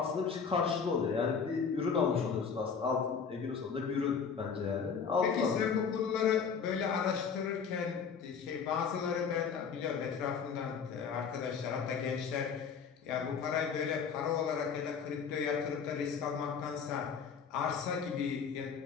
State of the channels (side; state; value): right; quieter; 6.3 dB